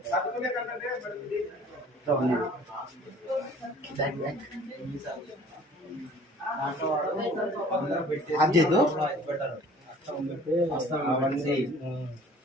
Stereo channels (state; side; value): normal; both; correlation 0.51